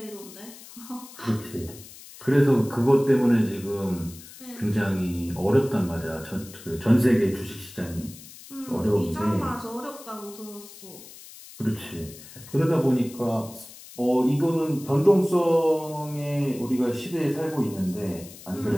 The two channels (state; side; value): noise; left; hiss, 18 dB below the sound